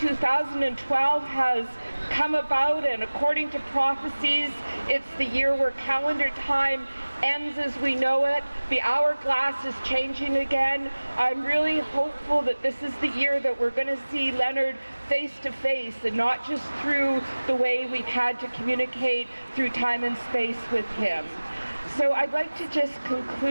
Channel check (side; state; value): both; inverted; correlation -1.00